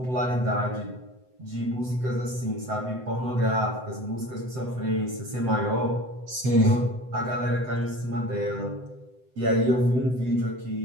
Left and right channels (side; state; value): left; late; 7.9 ms